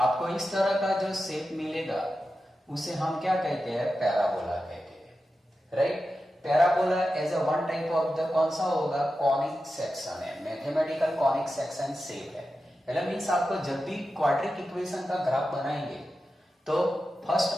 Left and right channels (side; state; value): both; normal; correlation 0.91